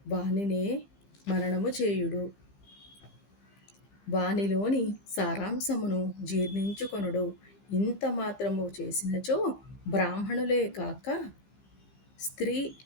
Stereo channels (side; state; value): right; late; 15 ms